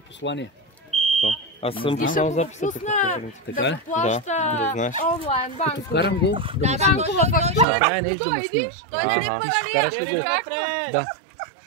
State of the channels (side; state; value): left; drops out; at 7.7 s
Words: Аз съм писал записата. Да го плаща онлайн банкова. Като вкарам го, да му Банкова фактура. Правя нещо да му снимаш. Ага. Ти ще вкараш ли го? Да.